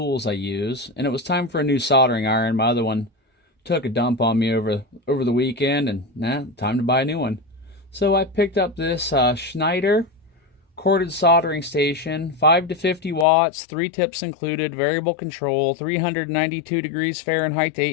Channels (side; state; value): right; drops out; at 13.2 s